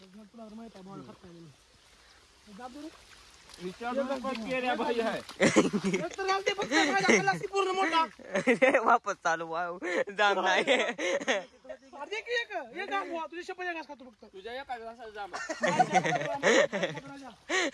भाई आहे पूर्ण मोठा वापस चालू जाम नाही तुझ्या शपथ घास खातो फक्त तुझ्या एका घासाला जाम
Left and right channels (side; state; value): both; identical; correlation 1.00